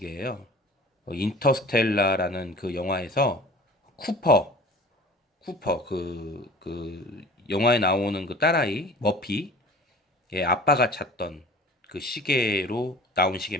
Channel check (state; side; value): normal; both; correlation 0.43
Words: 인터스텔라라는 그 영화에서 쿠퍼 그 영화에 나오는 그 딸아이 머피의 아빠가 찾던 그 시계로 나온